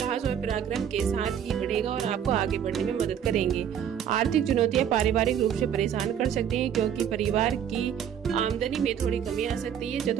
और पराक्रम के साथ ही बढ़ेगा और आपको आगे बढ़ने में मदद करेंगे। आर्थिक चुनौतियां पारिवारिक रूप से परेशान कर सकती हैं, क्योंकि परिवार की आमदनी में थोड़ी कमी आ सकती है।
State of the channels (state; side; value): quieter; left; 9.0 dB